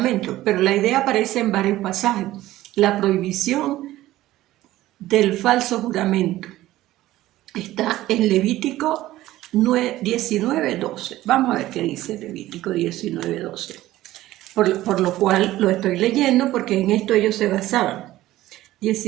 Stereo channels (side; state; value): left; quieter; 15.7 dB